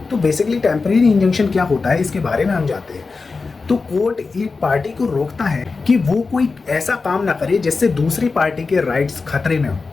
तो बेसिकली टेम्परेरी इंजंक्शन क्या होता है इसके बारे में हम जानते हैं। तो कोर्ट एक पार्टी को रोकता है कि वो कोई ऐसा काम ना करे जिससे दूसरी पार्टी के राइट्स खतरे में हो।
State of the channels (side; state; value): right; quieter; 4.3 dB